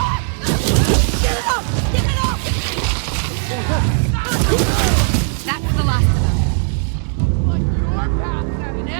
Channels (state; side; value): silent; left; 65 dB below the other